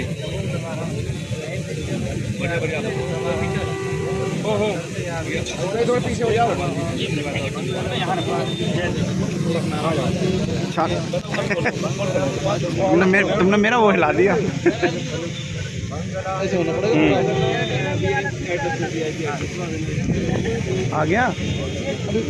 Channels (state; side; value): identical; both; correlation 1.00